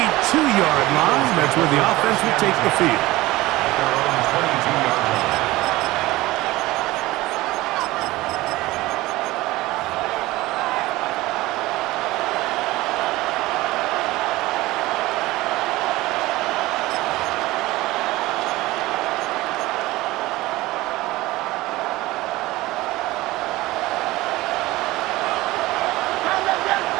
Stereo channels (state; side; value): quieter; left; 18.8 dB